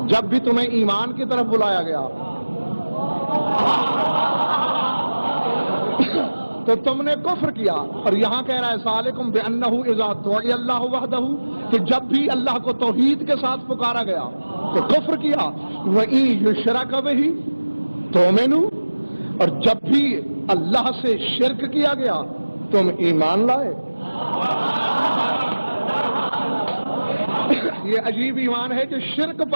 جب بھی تمہیں ایمان کی طرف بلایا گیا تو تم نے کفر کیا. اور یہاں کہہ رہا ہے ذالکم بانہ اذا دعی اللہ وحدہ، کہ جب بھی اللہ کو توحید کے ساتھ پکارا گیا تو کفر کیا. وَإِن يُشْرَكَ بِهِ تُؤْمِنُوا، اور جب بھی اللہ سے شرک کیا گیا تم ایمان لائے؟ یہ عجیب ایمان ہے جو شرک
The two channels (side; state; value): both; inverted; correlation -1.00